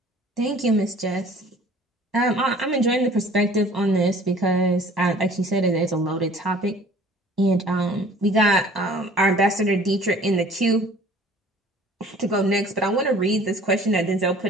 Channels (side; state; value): both; normal; correlation 0.50